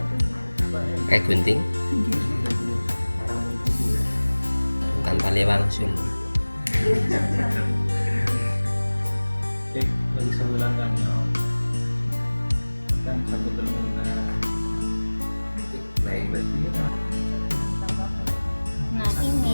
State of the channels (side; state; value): both; inverted; correlation -1.00